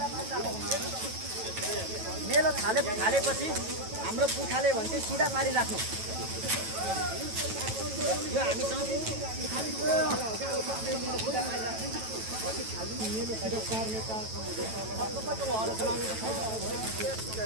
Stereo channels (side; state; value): left; late; 9.1 ms